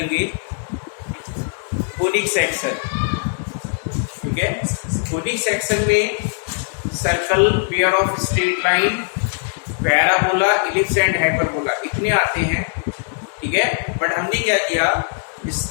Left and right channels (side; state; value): right; silent; digital silence